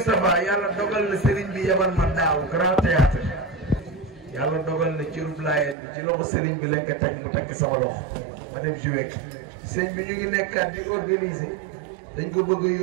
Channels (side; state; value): left; drops out; at 5.8 s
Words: yàlla dogal na Serigne bi yebal ma daaw grand théâtre yàlla dogal na ci rub laayeen bi ci loxo Serigne bi lañ ko teg mu teg sama loxo ma dem joué sëñ bi ñu ngi nekkaat di organiser dañ ko bëgg a